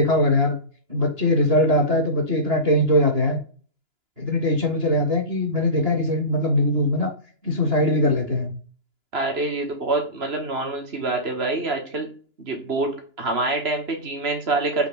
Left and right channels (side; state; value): left; late; 2.9 ms